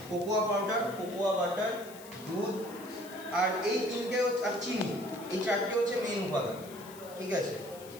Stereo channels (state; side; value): noise; left; hiss, 18 dB below the sound